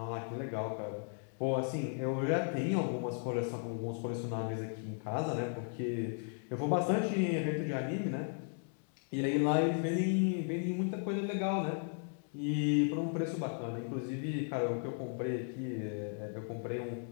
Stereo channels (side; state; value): right; silent; 54 dB below the other